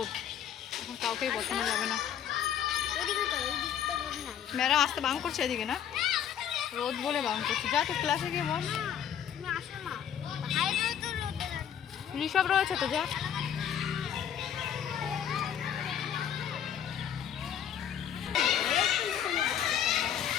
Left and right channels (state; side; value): quieter; right; 9.3 dB